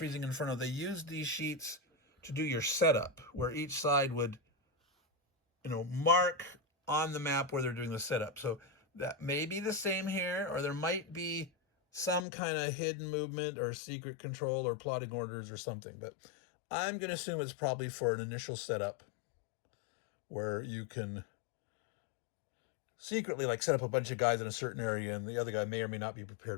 Inferno, they used these sheets to do your setup, where each side would, you know, mark on the map where they're doing the setup. So that may be the same here, or there might be some kind of hidden movement or secret control or plotting orders or something. But I'm going to assume it's probably for an initial setup where you can secretly like set up a bunch of guys in a certain area and the other guy may or may not be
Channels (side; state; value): right; drops out; at 12.2 s